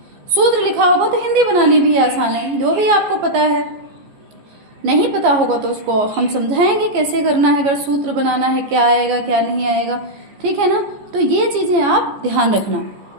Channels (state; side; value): late; left; 15 ms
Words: सूत्र लिखा होगा तो हिंदी बनानी भी आसान है। जो भी आपको पता है, नहीं पता होगा तो उसको हम समझाएंगे कैसे करना है, अगर सूत्र बनाना है क्या आएगा क्या नहीं आएगा, ठीक है ना। तो ये चीजें आप ध्यान रखना।